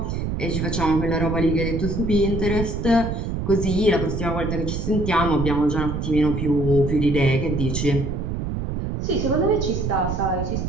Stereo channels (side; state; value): right; noise; rumble, 3 dB below the sound